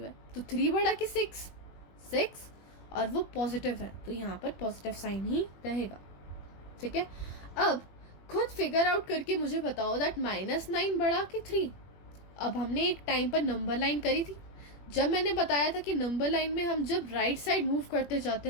है, तो 3 बड़ा कि 6, और वो पॉजिटिव है तो यहाँ पर पॉजिटिव साइन ही रहेगा। ठीक है, अब खुद फिगर आउट करके मुझे बताओ दैट -9 बड़ा कि 3। अब हमने एक टाइम पर नंबर लाइन करी थी, जब मैंने बताया था कि नंबर लाइन में हम जब राइट साइड मूव करते जाते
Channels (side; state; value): right; late; 21 ms